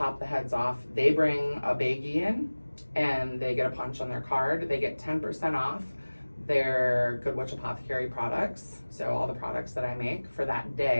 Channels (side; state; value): both; inverted; correlation -1.00